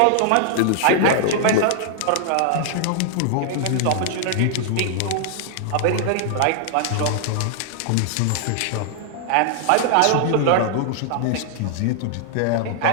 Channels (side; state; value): both; different; correlation -0.01